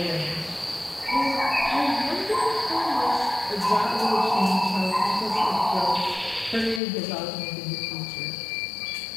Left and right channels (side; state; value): right; drops out; at 6.8 s